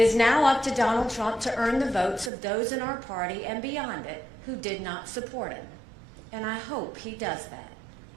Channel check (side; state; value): left; drops out; at 2.3 s